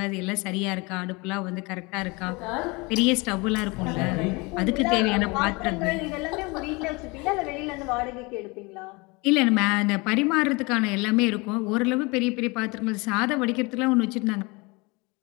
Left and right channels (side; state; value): right; quieter; 26.4 dB